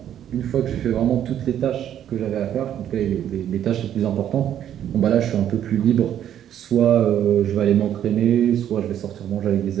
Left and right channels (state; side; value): quieter; left; 10.4 dB